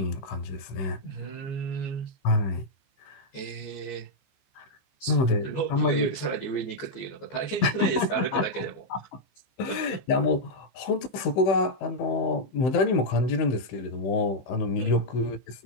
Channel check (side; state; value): right; late; 14 ms